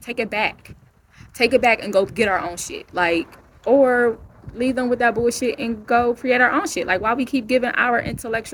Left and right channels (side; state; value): both; identical; correlation 1.00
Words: Take it back. Take it back and go get our own shit. Like, or leave them with that bullshit and go create our own shit. Like, why we keep giving our